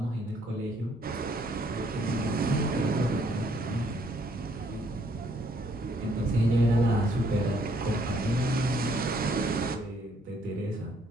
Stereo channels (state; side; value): normal; both; correlation 0.67